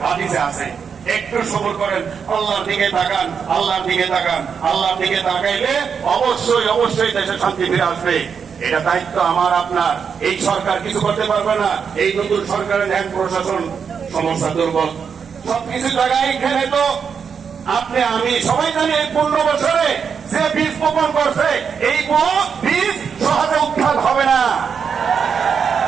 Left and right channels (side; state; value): left; quieter; 6.6 dB